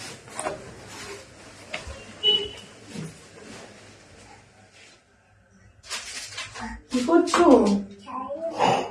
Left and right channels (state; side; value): identical; both; correlation 1.00